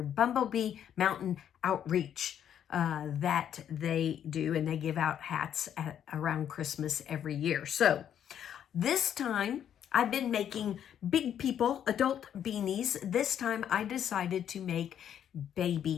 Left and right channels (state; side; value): quieter; right; 9.5 dB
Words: Bumblebee Mountain Outreach that they do, and they give out hats around Christmas every year. So this time I've been making big people, adult beanies. This time I decided to make